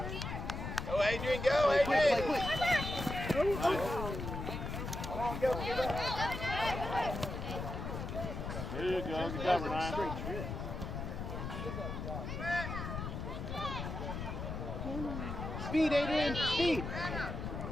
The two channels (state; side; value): noise; left; rumble, 5 dB below the sound